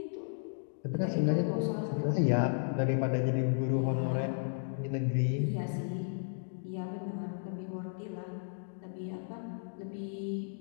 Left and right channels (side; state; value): right; silent; digital silence